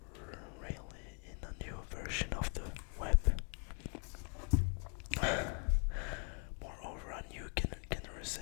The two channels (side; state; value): right; quieter; 36.3 dB